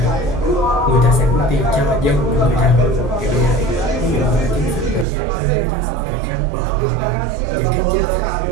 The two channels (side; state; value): left; drops out; at 5.1 s